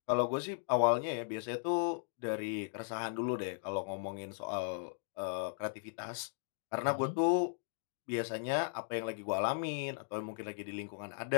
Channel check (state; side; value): silent; right; digital silence